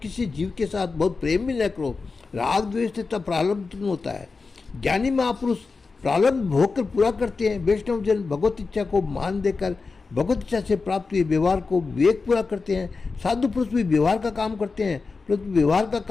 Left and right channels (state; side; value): quieter; right; 4.3 dB